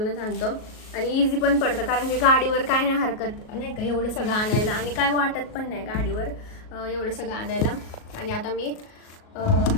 आणतो. आणि इझी पण पडतं कारण की गाडीवर काय नाही हरकत नाही का एवढं सगळं आणायला आणि काय वाटत पण नाही गाडीवर एवढं सगळं आणायला. आणि आता मी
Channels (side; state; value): right; late; 38 ms